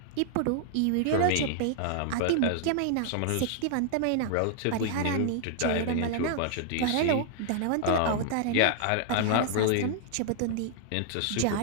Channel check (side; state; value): both; different; correlation -0.01